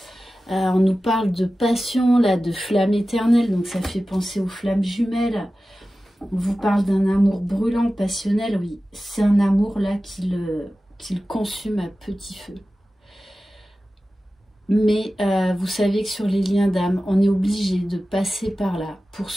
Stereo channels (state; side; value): normal; both; correlation 0.95